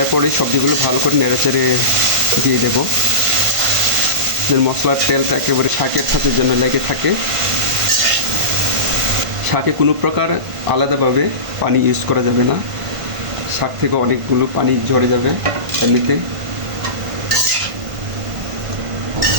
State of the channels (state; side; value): late; left; 1.5 ms